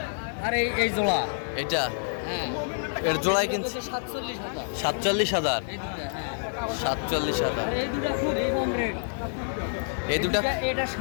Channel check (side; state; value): right; silent; digital silence